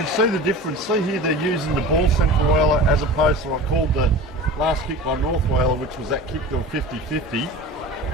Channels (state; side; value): normal; both; correlation 0.35